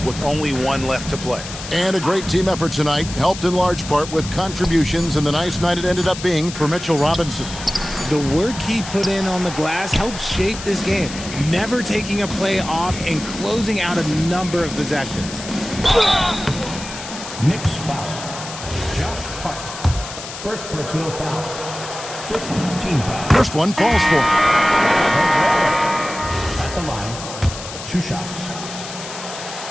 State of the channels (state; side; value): noise; left; hiss, 11 dB below the sound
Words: with only one left to play. And a great team effort tonight, helped in large part with contributions, and the nice night it ended up being for Mitchell Robinson. The work he put in on the glass helped shape this game, never taking a play off and closing out a number of possessions. Knicks foul. Josh Hart. First personal foul. First team foul. First one falls for him. At the line, 2 shots.